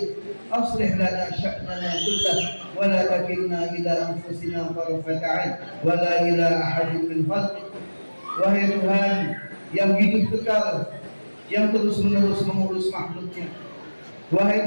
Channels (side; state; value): both; inverted; correlation -1.00